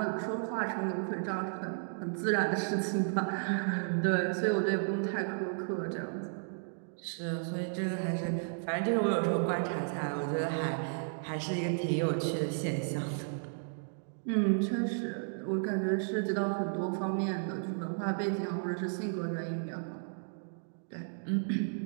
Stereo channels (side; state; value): left; silent; digital silence